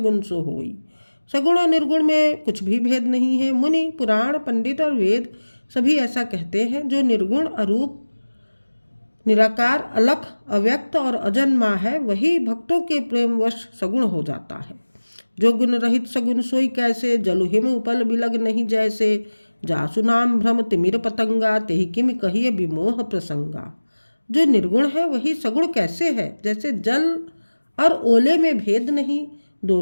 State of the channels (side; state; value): both; inverted; correlation -1.00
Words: सो होई। सगुण और निर्गुण में कुछ भी भेद नहीं है। मुनि पुराण पंडित और वेद सभी ऐसा कहते हैं। जो निर्गुण अरूप निराकार अलख अव्यक्त और अजन्मा है, वही भक्तों के प्रेमवश सगुण हो जाता है। जो गुण रहित सगुन सोई कैसे, जलु हिम उपल बिलग नहीं जैसे। जासु नाम भ्रम तिमिर पतंगा, तेहि किम कहिए विमोह प्रसंगा। जो निर्गुण है वही सगुण कैसे है, जैसे जल और ओले में भेद नहीं,